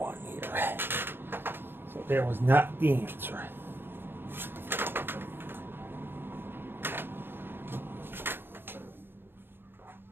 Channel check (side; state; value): left; late; 0.10 ms